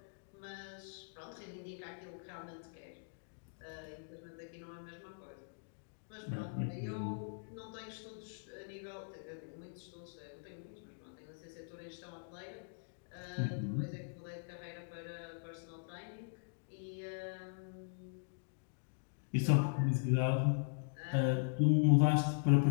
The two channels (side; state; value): right; silent; digital silence